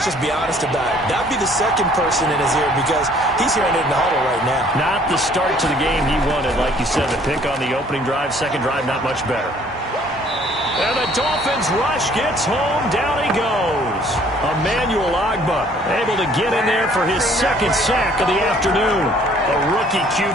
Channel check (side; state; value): both; normal; correlation 0.58